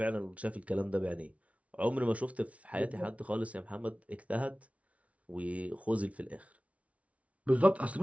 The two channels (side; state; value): left; late; 0.065 ms